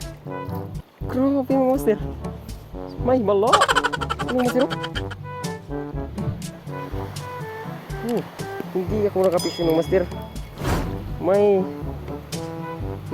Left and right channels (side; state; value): both; identical; correlation 1.00